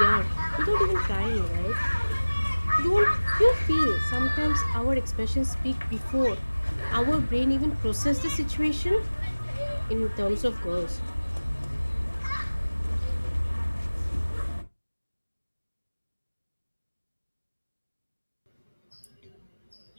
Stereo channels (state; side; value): inverted; both; correlation -1.00